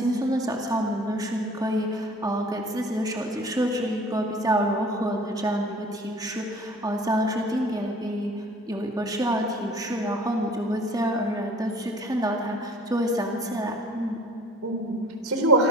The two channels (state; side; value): normal; both; correlation 0.48